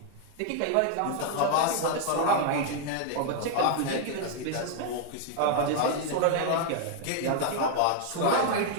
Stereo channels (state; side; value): different; both; correlation 0.00